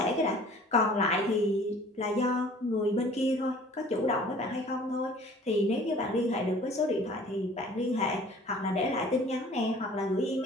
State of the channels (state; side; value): normal; both; correlation 0.50